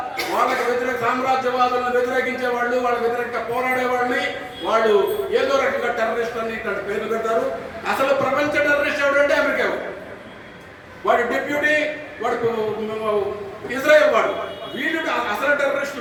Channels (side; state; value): both; identical; correlation 1.00